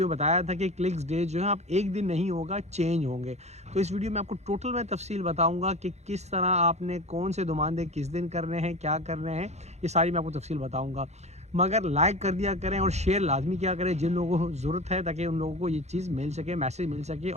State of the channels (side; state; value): left; late; 0.32 ms